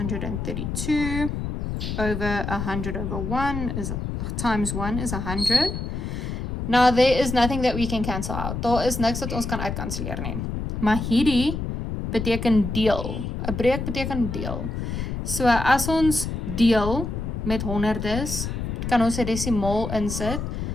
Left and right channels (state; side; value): noise; left; rumble, 4 dB below the sound